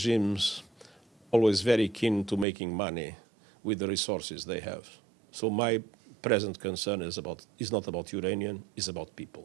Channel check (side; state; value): left; drops out; at 2.5 s